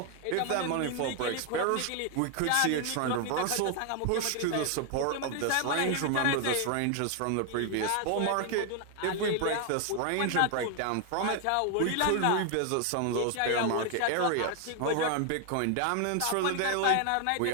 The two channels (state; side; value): different; both; correlation 0.00